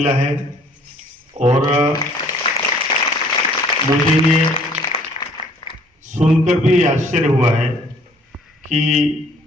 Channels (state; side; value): normal; both; correlation 0.58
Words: है और मुझे ये सुनकर भी आश्चर्य हुआ है कि